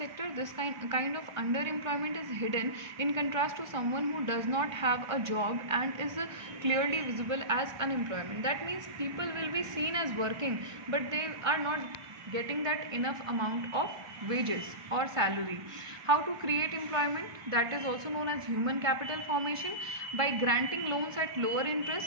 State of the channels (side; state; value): left; late; 1.6 ms